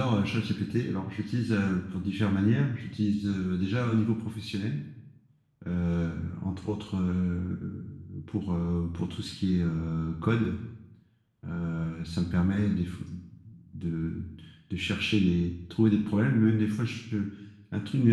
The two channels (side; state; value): both; identical; correlation 1.00